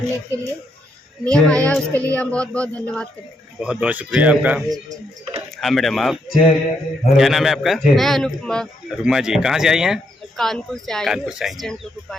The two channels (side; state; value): both; normal; correlation 0.77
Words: के लिए नियम आया, उसके लिए हम बहुत बहुत धन्यवाद करते हैं। बहुत बहुत शुक्रिया आपका। हाँ मैडम, आप क्या नाम है आपका? मैं अनुपमा रुमा जी, कहाँ से आई हैं? कानपुर से आई हूँ, कानपुर से आई हैं। असिस्टेंट लोको